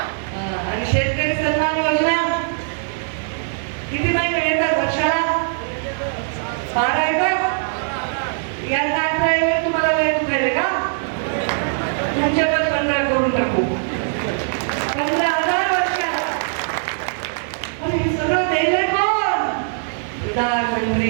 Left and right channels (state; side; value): silent; left; digital silence